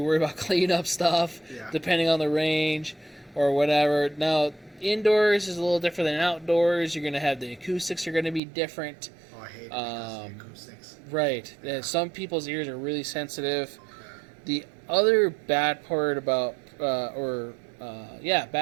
about cleanup stuff, depending on the range or whatever. Now, indoors is a little different than outdoors. You're going to have the acoustics are going to be different. Oh, I hate the acoustics. Right. Yeah. And some people's ears are really sensitive. The other bad part about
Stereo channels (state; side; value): drops out; left; at 8.4 s